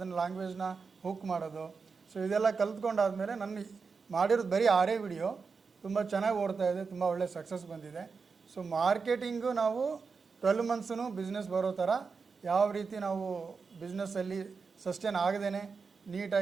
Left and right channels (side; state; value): left; quieter; 5.0 dB